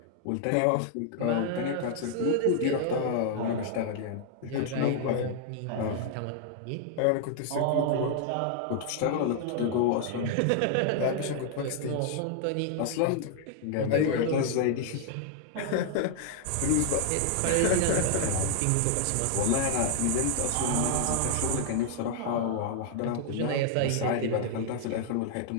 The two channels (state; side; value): different; both; correlation -0.01